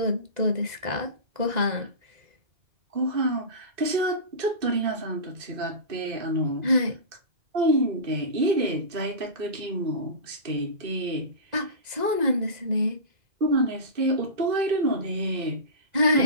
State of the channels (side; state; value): left; late; 2.0 ms